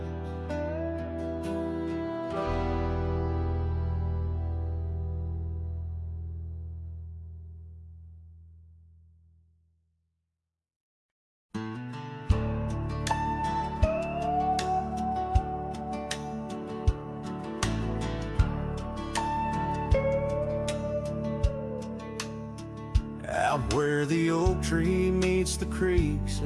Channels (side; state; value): both; identical; correlation 1.00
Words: Out where the oak tree meets the creek's